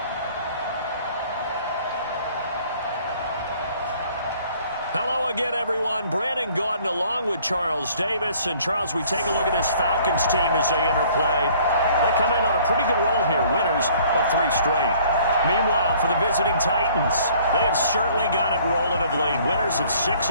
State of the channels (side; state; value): both; inverted; correlation -0.56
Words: Hello again, everyone. Brandon Gaudin along with Charles Davis. And, Charles, we take a look at this Falcons team as they interplay. They come in on a pretty good roll here, winners of 3 straight. Meanwhile, for the visiting Titans, they have certainly got it rolling of late. Winners of 6